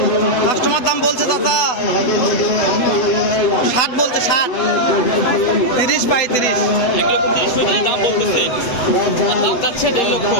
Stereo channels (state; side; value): late; right; 8.1 ms